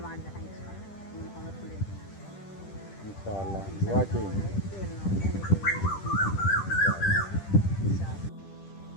மாடி தான் இன்ஷா அல்லாஹ் துஆ செய்யுங்க.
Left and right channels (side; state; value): right; late; 10 ms